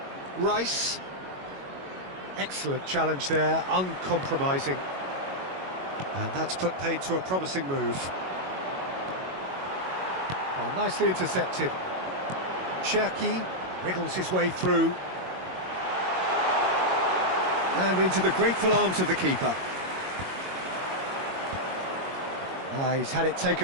Rice. Excellent challenge there, uncompromising. And that's put paid to a promising move. Oh, nicely intercepted. Cherki wriggles his way through. And into the grateful arms of the keeper. Ah, he's had it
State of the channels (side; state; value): left; late; 22 ms